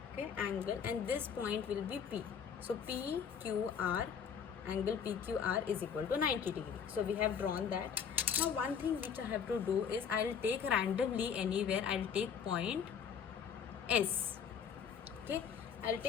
Okay, angle, and this point will be P. So PQR, angle PQR is equal to 90 degree. So we have drawn that. Now one thing which I have to do is, I'll take randomly anywhere, I'll take point S. Okay, I'll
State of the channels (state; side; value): quieter; right; 7.2 dB